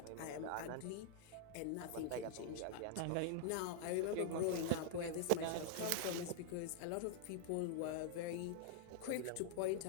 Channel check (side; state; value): both; different; correlation -0.01